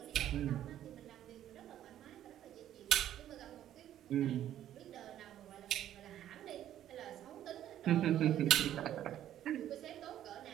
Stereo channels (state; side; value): quieter; left; 11.7 dB